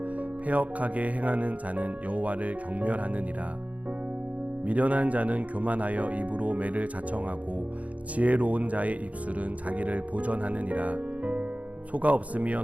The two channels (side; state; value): left; late; 0.069 ms